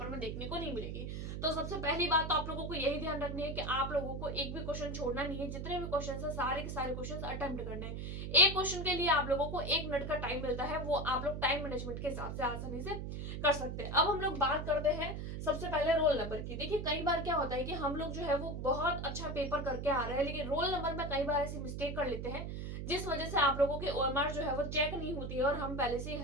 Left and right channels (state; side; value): noise; right; hum, 5 dB below the sound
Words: में देखने को नहीं मिलेगी। तो सबसे पहली बात तो आप लोगों को यही ध्यान रखनी है कि आप लोगों को एक भी क्वेश्चन छोड़ना नहीं है। जितने भी क्वेश्चन है सारे के सारे क्वेश्चन अटेम्प्ट करने हैं। एक क्वेश्चन के लिए आप लोगों को 1 मिनट का टाइम मिलता है, वो आप लोग टाइम मैनेजमेंट के हिसाब से आसानी से कर सकते हैं। अब हम लोग बात करते हैं सबसे पहले रोल नंबर की। देखिए कई बार क्या होता है कि हम लोग जो है वो बहुत अच्छा पेपर करके आ रहे हैं, लेकिन रोल नंबर में कई बार ऐसी मिस्टेक कर लेते हैं जिस वजह से आप लोगों की ओएमआर जो है वो चेक नहीं होती है और हम पहले से